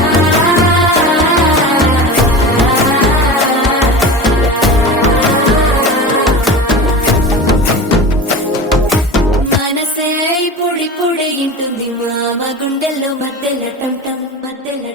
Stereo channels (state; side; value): normal; both; correlation 0.31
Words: పొడి పొడి ఇంటుంది మామ గుండెల్లో మధ్యల టం మధ్యల